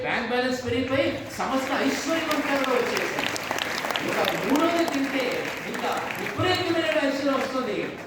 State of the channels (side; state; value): both; identical; correlation 1.00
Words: బ్యాంక్ బ్యాలెన్స్ పెరిగిపోయి సమస్త ఐశ్వర్యవంతంగా వచ్చేసాయి. ఇంకా మూడోది తింటే ఇంకా విపరీతమైన ఐశ్వర్యం వస్తుంది.